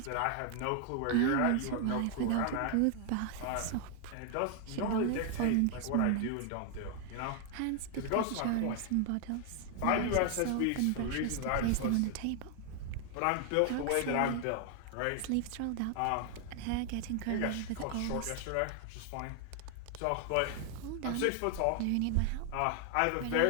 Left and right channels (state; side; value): different; both; correlation 0.00